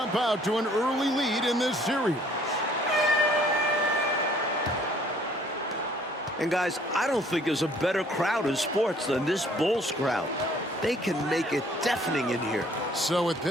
out to an early lead in this series. And guys, I don't think there's a better crowd in sports than this Bulls crowd. They can make it deafening in here. So with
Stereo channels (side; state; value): both; normal; correlation 0.59